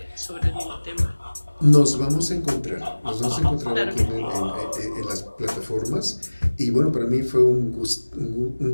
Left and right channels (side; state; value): both; inverted; correlation -1.00